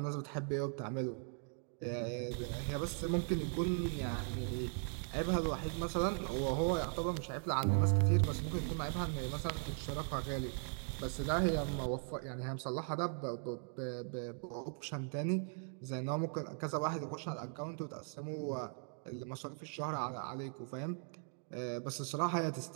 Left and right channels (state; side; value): silent; left; 52 dB below the other